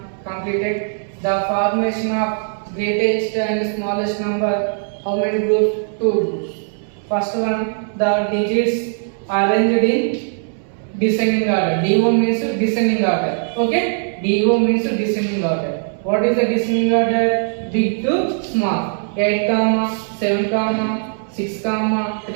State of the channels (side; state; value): left; silent; digital silence